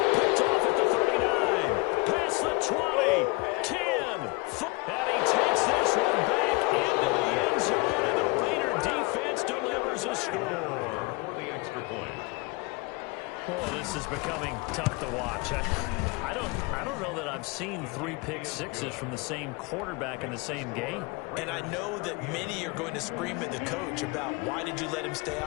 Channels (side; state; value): right; quieter; 25.9 dB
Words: Picked off at the 39. Past the 20. 10. And he takes this one back into the end zone, and the Raider defense delivers a score. For the extra point. Oh, this is becoming tough to watch. I don't know that I've seen 3 pick sixes from the same quarterback in the same game. And I know that many are going to scream at the coach about why did you let him stay